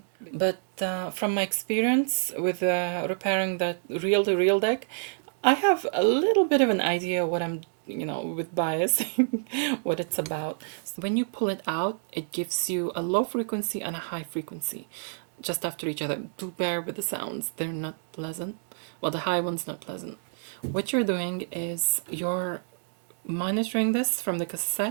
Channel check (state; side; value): silent; left; digital silence